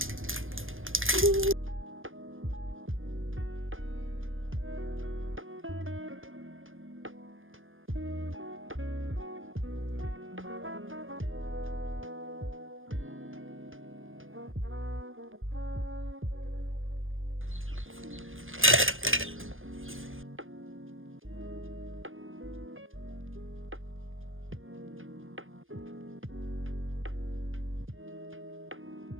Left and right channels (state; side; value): late; left; 0.59 ms